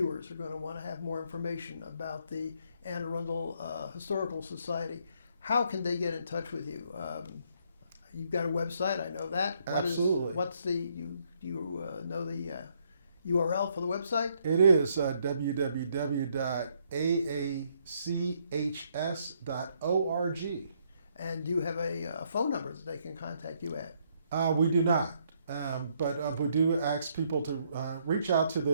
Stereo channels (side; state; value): both; inverted; correlation -0.71